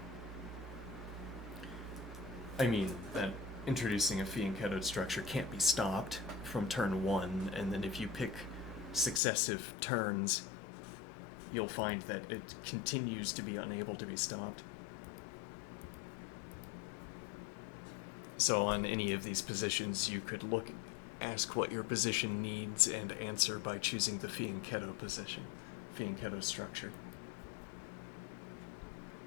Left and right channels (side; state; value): right; drops out; at 9.2 s